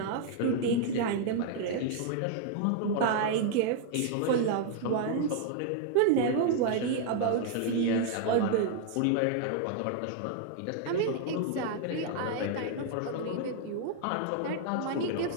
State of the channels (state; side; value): different; both; correlation 0.00